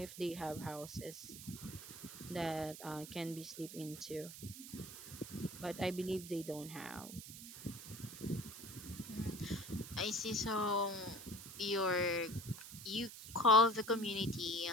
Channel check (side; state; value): right; noise; hiss, 12 dB below the sound